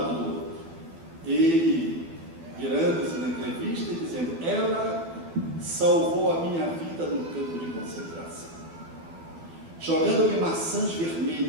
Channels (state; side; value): late; left; 12 ms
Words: do outro, ele virando-se na entrevista e dizendo: ela salvou a minha vida no campo de concentração, jogando-me maçãs